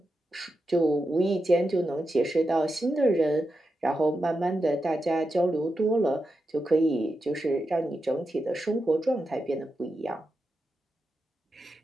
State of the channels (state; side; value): normal; both; correlation 0.88